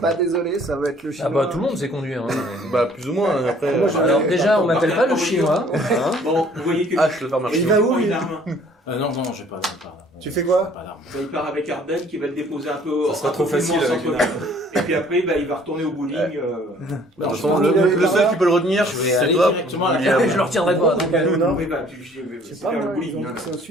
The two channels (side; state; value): both; normal; correlation 0.56